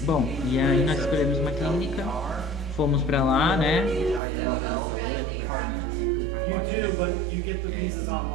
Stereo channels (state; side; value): drops out; left; at 4.2 s